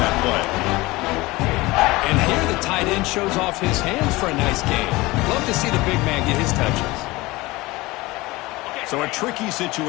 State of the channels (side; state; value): right; quieter; 20.9 dB